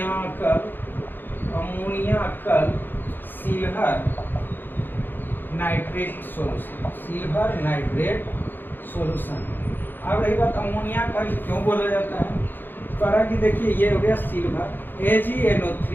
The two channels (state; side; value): late; right; 0.094 ms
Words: अमोनियाकल silver nitrate solution. Silver nitrate solution. अब रही बात अमोनिया का क्यों बोला जाता है, करा कि देखिए ये हो गया silver AgNO3